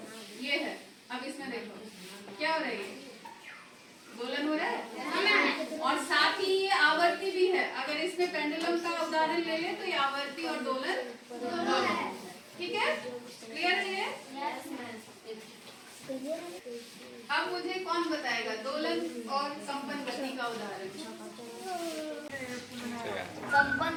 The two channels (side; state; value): both; identical; correlation 1.00